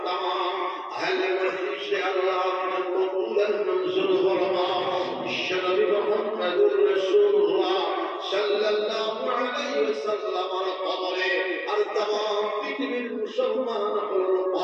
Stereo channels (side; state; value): both; identical; correlation 1.00